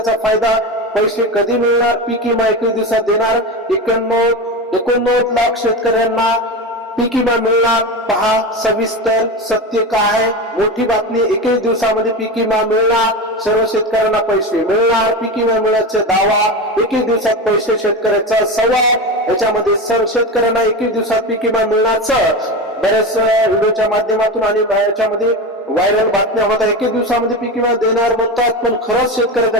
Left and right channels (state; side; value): normal; both; correlation 0.22